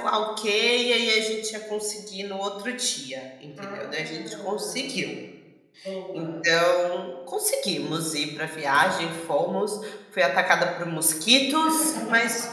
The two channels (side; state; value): both; identical; correlation 1.00